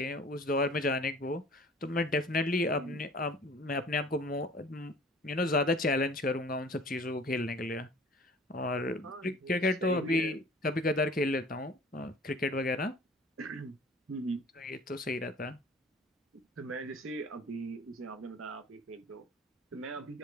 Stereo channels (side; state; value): both; normal; correlation 0.47